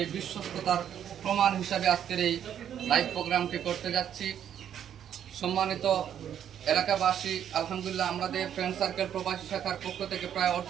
বিশ্বস্ততার প্রমাণ হিসাবে আজকের এই লাইভ প্রোগ্রামটি করতে যাচ্ছি। সম্মানিত এলাকাবাসী, আলহামদুলিল্লাহ আমাদের ফ্রেন্ড সার্কেল প্রবাসী শাখার পক্ষ থেকে প্রায়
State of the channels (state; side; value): quieter; left; 9.5 dB